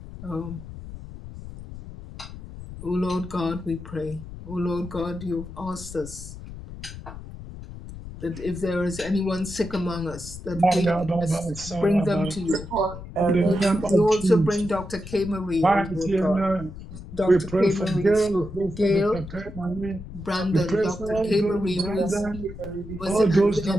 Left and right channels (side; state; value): left; noise; rumble, 12 dB below the sound